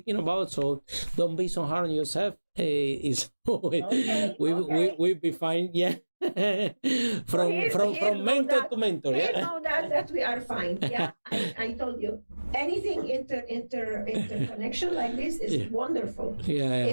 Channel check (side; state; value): both; inverted; correlation -1.00